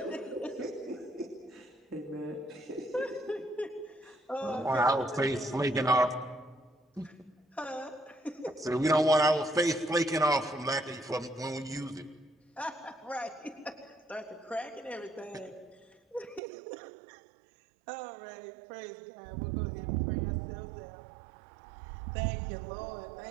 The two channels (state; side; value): drops out; left; at 16.4 s